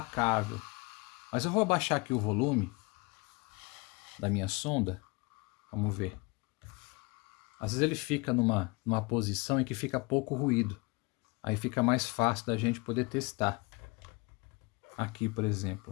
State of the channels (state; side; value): quieter; right; 27.1 dB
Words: Mas eu vou abaixar aqui o volume da minha sonda. Vamos ver. Às vezes ele fica numa posição em que fica pouco ruído. Aí fica mais fácil da gente poder testar. Aqui, por